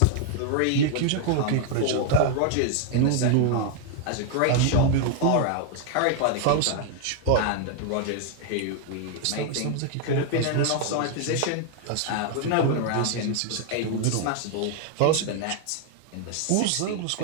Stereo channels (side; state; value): both; different; correlation 0.00